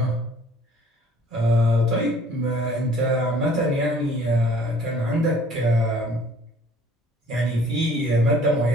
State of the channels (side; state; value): both; normal; correlation 0.55